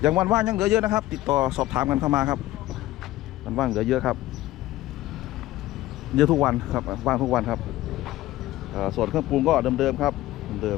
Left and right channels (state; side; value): quieter; right; 16.0 dB